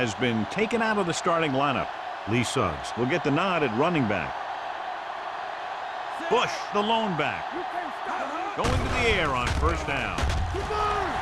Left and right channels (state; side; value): identical; both; correlation 1.00